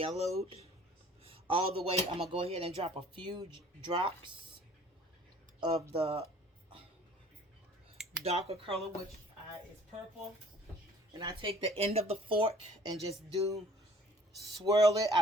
all the way, I'm going to go ahead and drop a few drops of the darker color, which is purple. And I take the end of the fork and just swirl it.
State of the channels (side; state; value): both; normal; correlation 0.52